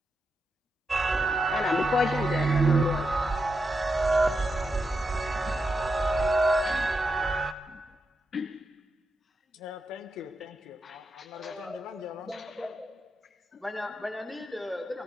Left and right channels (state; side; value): normal; both; correlation 0.86